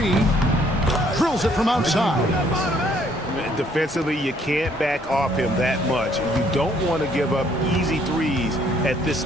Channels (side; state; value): both; normal; correlation 0.65